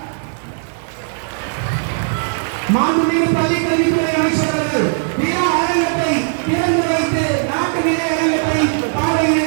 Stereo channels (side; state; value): left; silent; 68 dB below the other